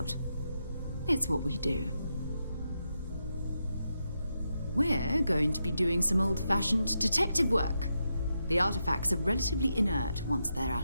It's what we do. We're going to be doing some old-fashioned detective work. The artifacts are relatively inert once they're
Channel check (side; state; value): both; inverted; correlation -0.85